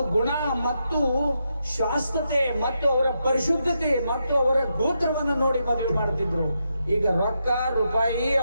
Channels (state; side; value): inverted; both; correlation -0.83